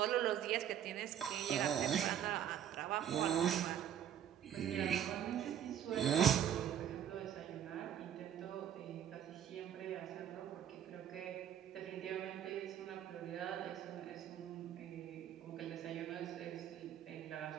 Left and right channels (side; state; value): left; quieter; 9.7 dB